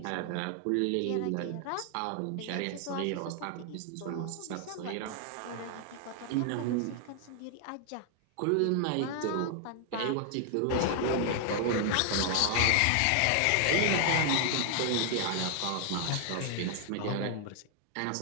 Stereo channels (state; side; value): different; both; correlation 0.00